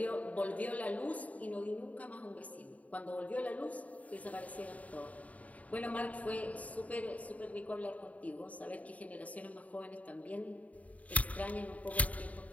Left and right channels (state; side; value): late; right; 0.070 ms